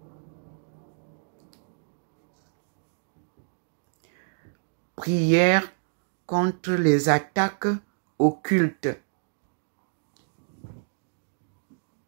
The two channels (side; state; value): left; silent; digital silence